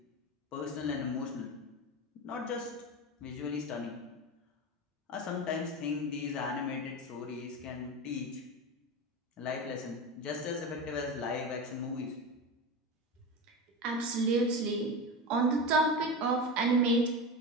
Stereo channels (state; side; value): normal; both; correlation 0.23